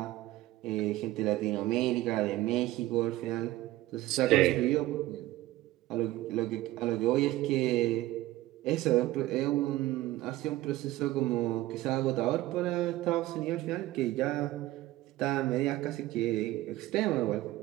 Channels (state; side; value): quieter; left; 16.6 dB